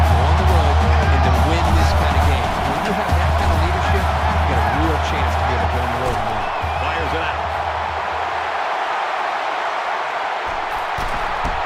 go on the road and to win this kind of game. When you have that kind of leadership, you got a real chance to be able to go on the road and win. Fires it out.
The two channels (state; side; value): identical; both; correlation 1.00